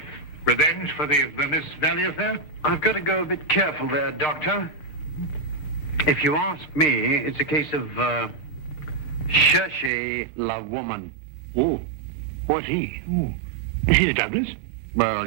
Revenge for the Vermissa Valley affair? I've got to go a bit careful there, Doctor. If you ask me, it's a case of Cherchez la woman. Oh, what's he? Oh, is he the Douglas? Well,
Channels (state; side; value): drops out; left; at 9.9 s